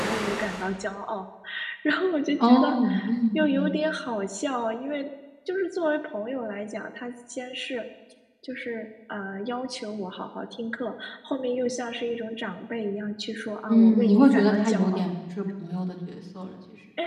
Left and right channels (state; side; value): identical; both; correlation 1.00